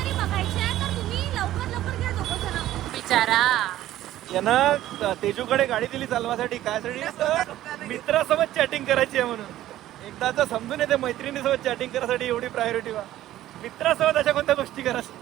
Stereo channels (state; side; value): quieter; left; 13.8 dB